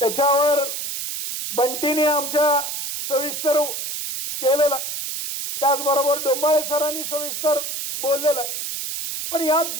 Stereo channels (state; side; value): noise; right; hiss, 5 dB below the sound